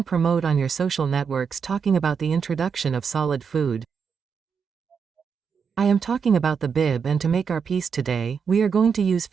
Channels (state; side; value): quieter; left; 6.3 dB